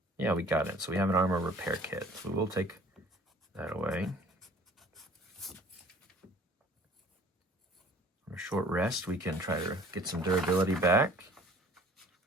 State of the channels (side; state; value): both; normal; correlation 0.52